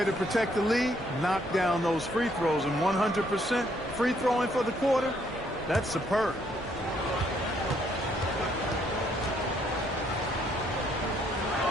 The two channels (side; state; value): both; normal; correlation 0.69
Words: to protect the lead, knock down those free throws, and 100% free throwing for the quarter, that's superb.